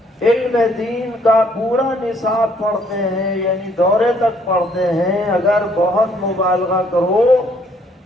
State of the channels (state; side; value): normal; both; correlation 0.65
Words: علم دین کا پورا نصاب پڑھتے ہیں، یعنی دورے تک پڑھتے ہیں، اگر بہت مبالغہ کرو